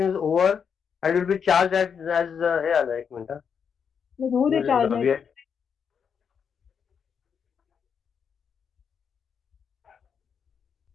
is over and will be charged as हे आलं. एक मिनिट. होऊ दे चार्ज नाही.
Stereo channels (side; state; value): right; quieter; 6.9 dB